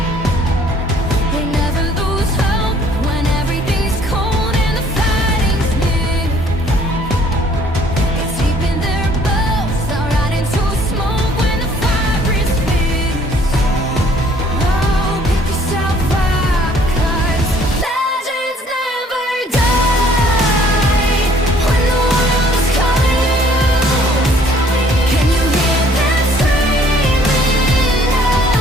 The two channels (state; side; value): normal; both; correlation 0.59